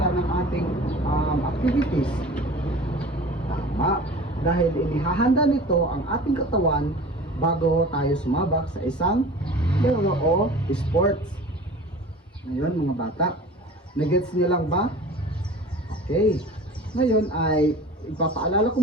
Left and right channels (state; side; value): normal; both; correlation 0.40